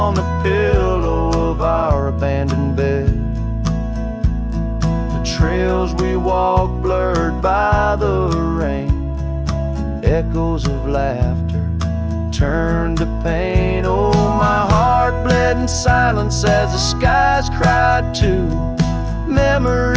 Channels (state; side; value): identical; both; correlation 1.00